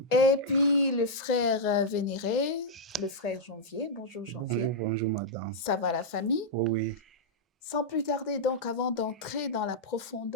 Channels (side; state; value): both; normal; correlation -0.06